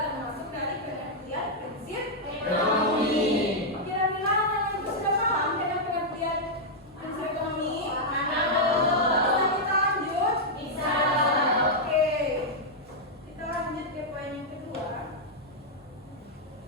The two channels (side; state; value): both; normal; correlation -0.05